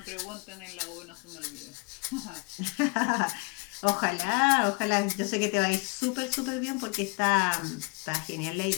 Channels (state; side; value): quieter; right; 31.8 dB